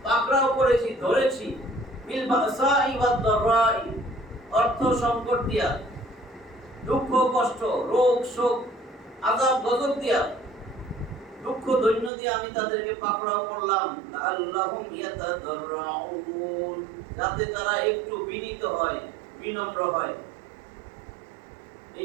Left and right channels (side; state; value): left; drops out; at 12.1 s